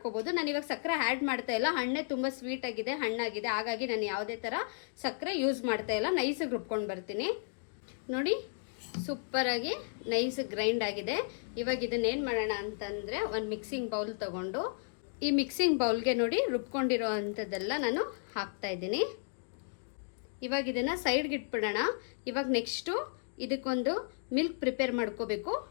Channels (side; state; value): right; silent; digital silence